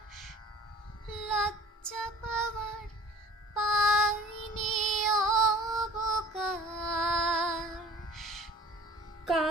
লজ্জা পাওয়ার পাইনি অবকাশ।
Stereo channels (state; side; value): normal; both; correlation 0.47